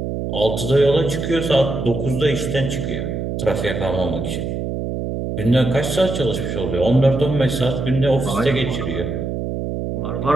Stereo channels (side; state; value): right; noise; hum, 3 dB below the sound